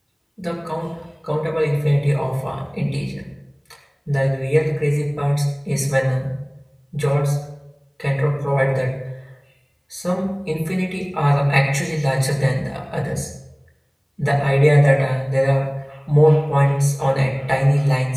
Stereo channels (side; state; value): both; identical; correlation 1.00